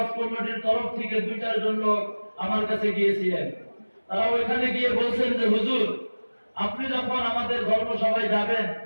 কমিটির তরফ থেকে 2-4 জন লোক আমার কাছে গিয়েছিলেন। তারা ওইখানে গিয়ে বলছেন যে হুজুর, আপনি যখন আমাদের ধর্মসভায় যাবেন,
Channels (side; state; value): both; inverted; correlation -1.00